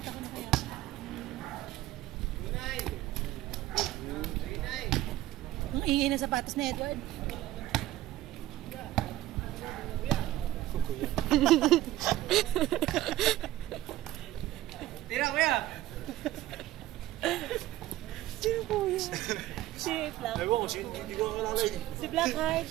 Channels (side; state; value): left; quieter; 15.2 dB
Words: ko na kaya. Ang ingay na sapatos ni Edward. Tira, kuya! Sino po yun? Si Black. Ewan ko, hindi ko kalala yun. Si Blackheart,